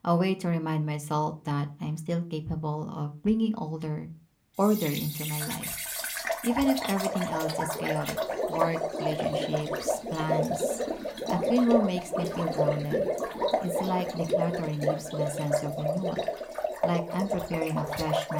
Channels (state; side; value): identical; both; correlation 1.00